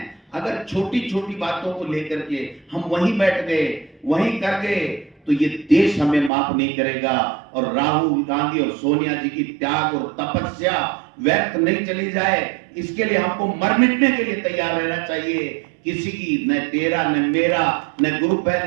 अगर छोटी छोटी बातों को लेकर के हम वहीं बैठ गए, वहीं कर गए, तो ये देश हमें माफ नहीं करेगा। और राहुल गांधी और सोनिया जी की त्याग और तपस्या व्यर्थ नहीं चली जाए, इसके लिए हमको मर मिटने के लिए तैयार रहना चाहिए। किसी की न तेरा न मेरा न ग्रुप है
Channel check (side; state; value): left; drops out; at 6.3 s